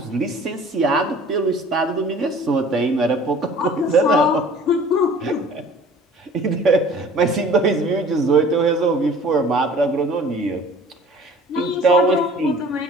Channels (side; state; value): both; normal; correlation 0.48